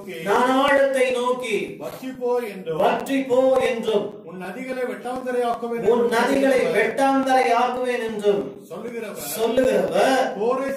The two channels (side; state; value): both; identical; correlation 1.00